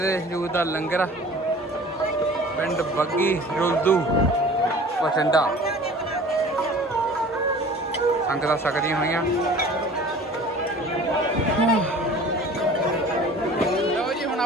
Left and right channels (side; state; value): both; normal; correlation 0.45